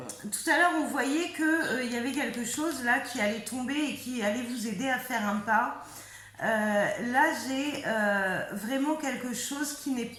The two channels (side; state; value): both; identical; correlation 1.00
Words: à l'heure, on voyait qu'il y avait quelque chose là qui allait tomber et qui allait vous aider à faire un pas. Là, j'ai vraiment quelque chose qui n'est